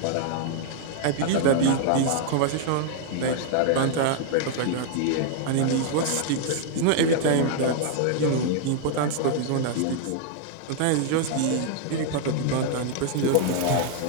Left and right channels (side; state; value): both; different; correlation -0.01